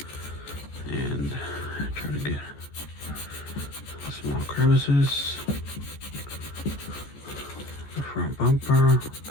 and try to get small crevices, the front bumper,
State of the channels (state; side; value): late; right; 14 ms